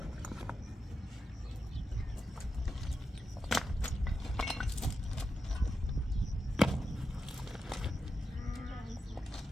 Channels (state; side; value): normal; both; correlation 0.88